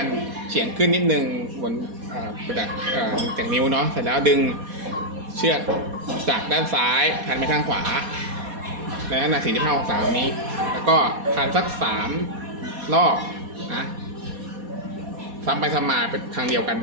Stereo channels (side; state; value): left; late; 4.2 ms